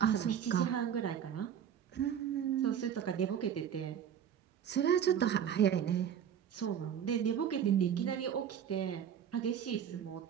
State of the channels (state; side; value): quieter; left; 8.8 dB